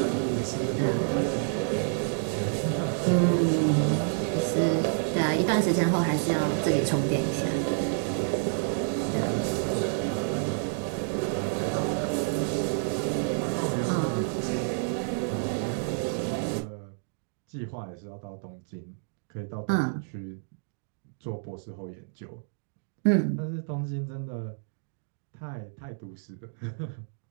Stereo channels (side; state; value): left; silent; digital silence